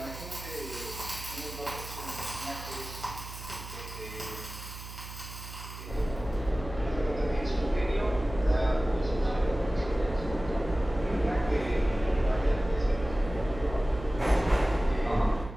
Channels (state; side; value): noise; right; hum, 12 dB below the sound